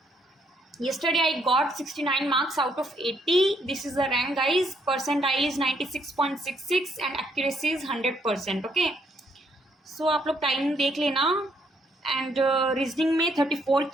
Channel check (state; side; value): normal; both; correlation 0.71